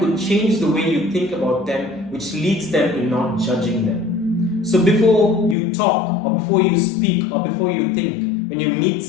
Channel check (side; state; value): right; drops out; at 5.6 s